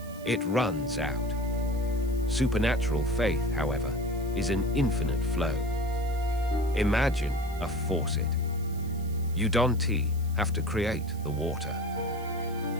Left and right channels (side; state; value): right; noise; hiss, 21 dB below the sound